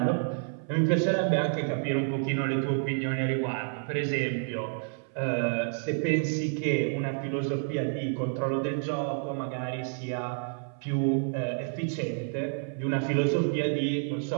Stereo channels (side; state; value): left; silent; 58 dB below the other